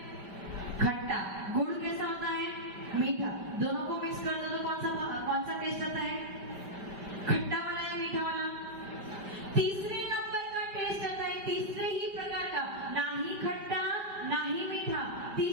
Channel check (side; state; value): left; late; 5.2 ms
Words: खट्टा। गुड़ कैसा होता है? मीठा। दोनों को मिक्स कर दो तो कौन सा टेस्ट आता है? खट्टा वाला या मीठा वाला? तीसरे नंबर का टेस्ट आता है, तीसरे ही प्रकार का, ना ही खट्टा ना ही मीठा,